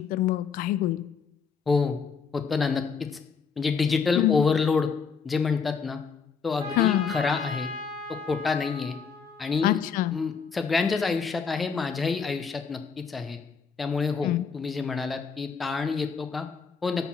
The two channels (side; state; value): right; quieter; 5.9 dB